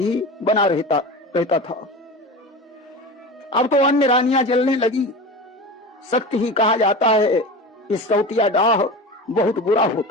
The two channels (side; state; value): both; normal; correlation 0.30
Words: बना रहता था। अब तो अन्य रानियां जलने लगी। सत्य ही कहा जाता है, इस सौतिया डाह बहुत बुरा